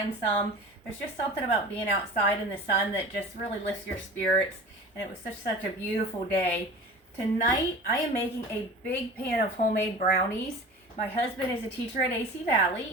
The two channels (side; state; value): both; normal; correlation 0.38